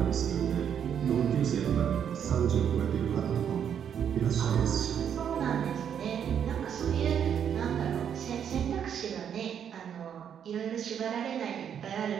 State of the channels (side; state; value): left; quieter; 8.5 dB